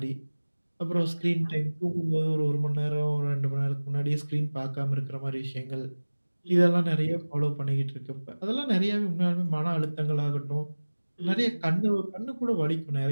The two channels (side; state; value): both; inverted; correlation -1.00